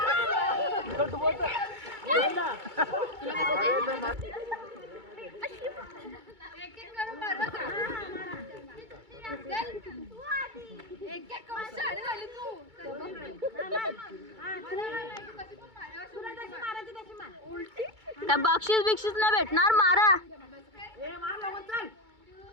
त्या बक्षीस बिक्षीस नाही भेटणार. मारा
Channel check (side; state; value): left; late; 2.3 ms